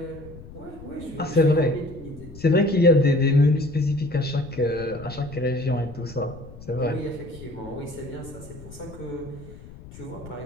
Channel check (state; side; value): noise; left; rumble, 17 dB below the sound